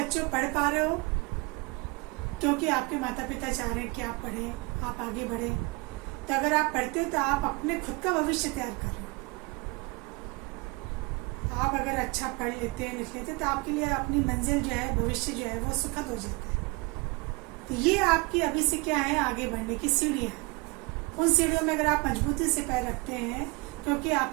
पढ़ पा रहे हो क्योंकि आपके माता पिता चाह रहे हैं कि आप पढ़ें, आप आगे बढ़ें। तो अगर आप पढ़ते हो तो आप अपने खुद का भविष्य तैयार कर रहे हो। आप अगर अच्छा पढ़ लेते हैं, लिख लेते हैं, तो आपके लिए अपनी मंजिल जो है, भविष्य जो है वो सुखद हो जाता है। तो ये आपकी अभी से क्या है, आगे बढ़ने की सीढ़ियाँ हैं। उन सीढ़ियों में अगर आप मजबूती से पैर रखते हैं, क्योंकि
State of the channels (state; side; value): quieter; left; 26.8 dB